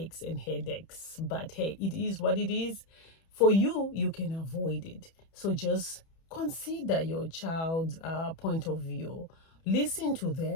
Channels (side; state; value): right; late; 31 ms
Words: and headaches. But hey, it is what it is. For you, you can avoid it. So just consider your child's point of view. Listen to